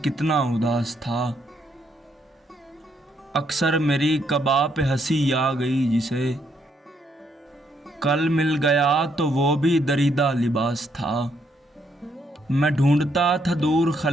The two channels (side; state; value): both; normal; correlation 0.74